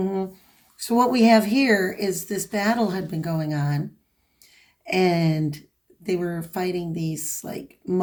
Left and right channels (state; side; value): identical; both; correlation 1.00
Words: So what we have here is this battle had been going on, and they were fighting these like